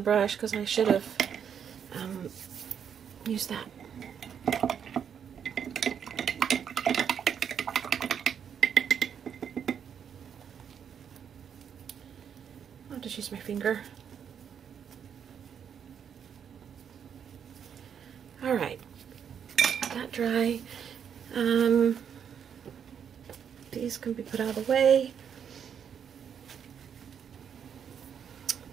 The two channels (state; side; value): quieter; left; 7.9 dB